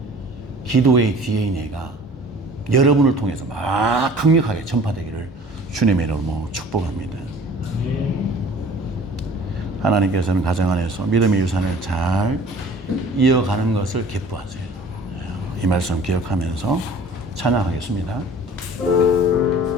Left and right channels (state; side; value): normal; both; correlation 0.48